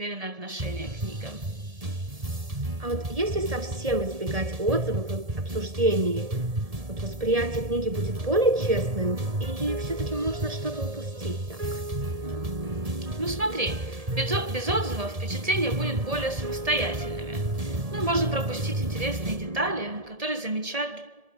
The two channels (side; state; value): left; late; 1.7 ms